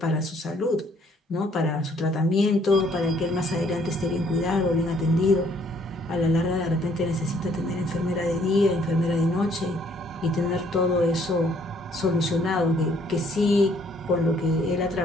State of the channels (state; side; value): normal; both; correlation 0.64